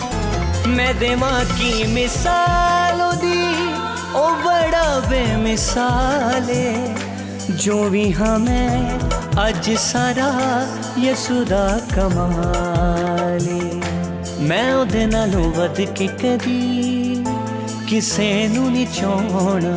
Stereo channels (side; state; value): both; identical; correlation 1.00